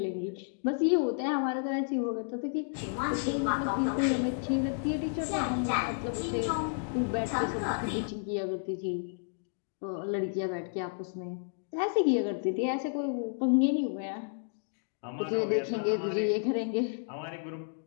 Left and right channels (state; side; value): silent; right; digital silence